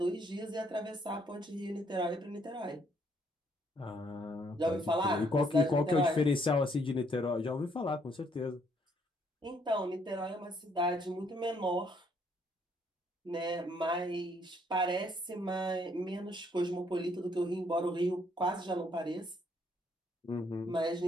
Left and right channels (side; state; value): both; normal; correlation 0.68